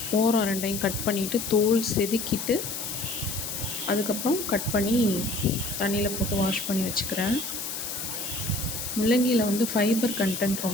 ஓரம் ரெண்டையும் கட் பண்ணிவிட்டு தோல் செதுக்கிட்டு அதுக்கப்புறம் கட் பண்ணி தண்ணியில் போட்டு வாஷ் பண்ணி வச்சுக்கிறேன். முள்ளங்கியில் வந்து ஃபைபர் கண்டென்ட்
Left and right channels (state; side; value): noise; left; hiss, 5 dB below the sound